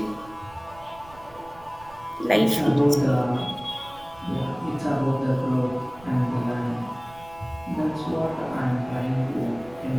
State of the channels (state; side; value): noise; right; rumble, 22 dB below the sound